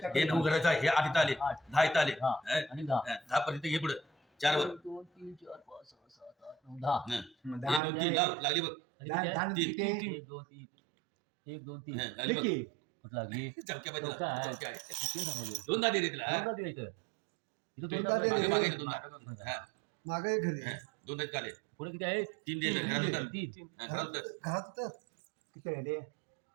हे 9 घराचं आहे हे 8 इथं आले 10 इथं आले हा. आणि दहा 10 पर्यंत हे पुढे 4 वर एक दोन तीन चार पाच सहा सात आठ नऊ दहा 1 2 3 लागली बघ आणि किती आहे? तीन. एक दोन तीन एक दोन तीन लागली बघ कुठं लागली चौक्या पाहिजे चौका आहे. चौक्या आहे किती सांगायचं? दोन दे रे तिला दोनदा द्यायचं. इथं दोनदा दोनदा दे. मागे द्यायचं. मागे दोन हा मागे घरी दोन आहेत काले पुढे किती आहे 3 दे घरात उतर तीन घरात उतर घरात तर किती आहे रे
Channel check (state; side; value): drops out; left; at 7.8 s